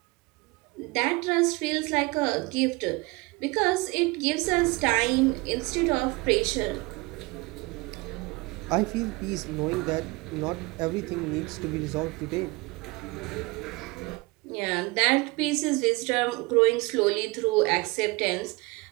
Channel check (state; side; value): quieter; left; 24.6 dB